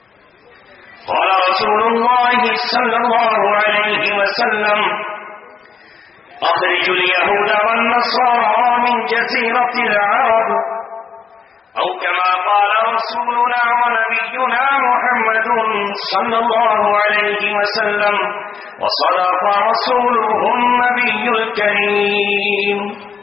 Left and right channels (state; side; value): quieter; right; 6.3 dB